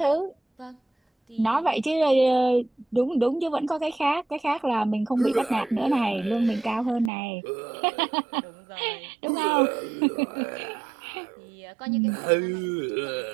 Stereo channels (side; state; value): left; drops out; at 7.1 s